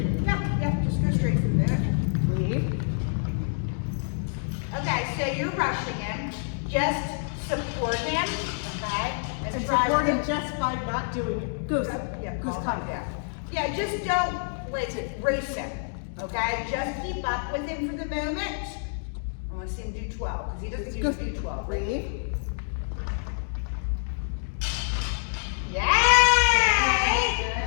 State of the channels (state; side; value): silent; right; digital silence